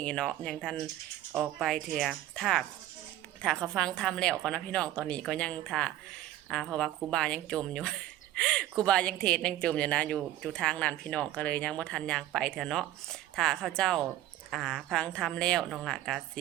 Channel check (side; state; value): left; quieter; 13.9 dB